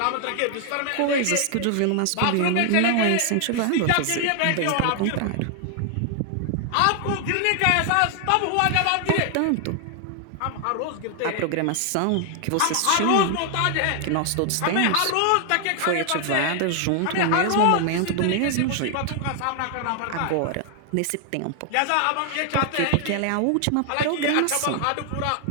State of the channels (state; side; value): different; both; correlation 0.00